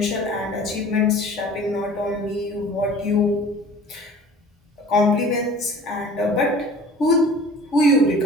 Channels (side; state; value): both; normal; correlation 0.45